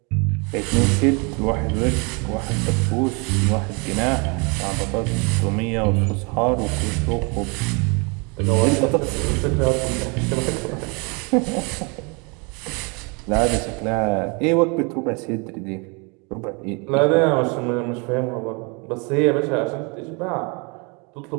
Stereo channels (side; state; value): left; quieter; 31.6 dB